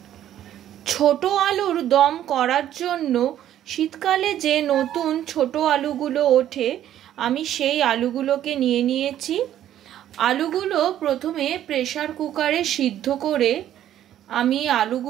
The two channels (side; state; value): left; quieter; 11.6 dB